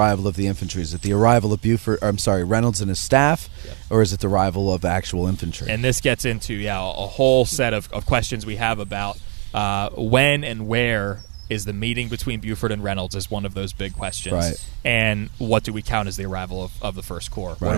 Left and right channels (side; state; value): left; quieter; 38.1 dB